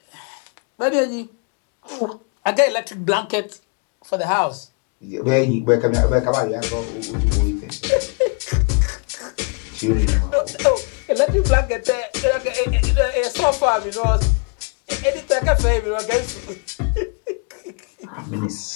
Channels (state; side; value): quieter; right; 36.3 dB